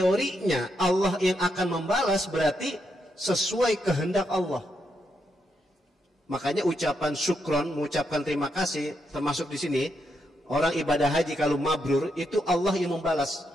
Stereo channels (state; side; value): normal; both; correlation 0.81